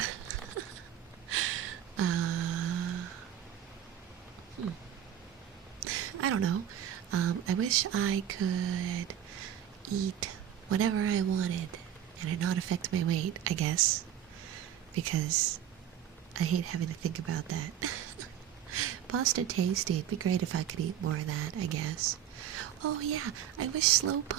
I don't know. I wish I could eat whatever I wanted and it not affect my weight, I guess. Because I hate having to think about that. Pasta tasty. It'd be great if I could eat more of that, I guess. Oh yeah, I wish slow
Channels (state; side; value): quieter; left; 10.1 dB